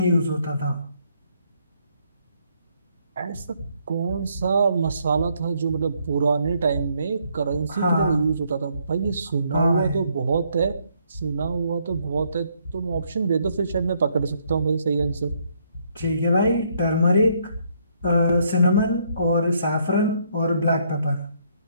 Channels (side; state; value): both; inverted; correlation -0.70